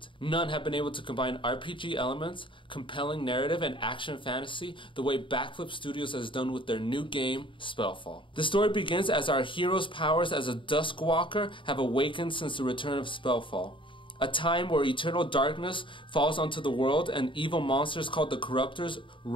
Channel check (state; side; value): late; right; 0.24 ms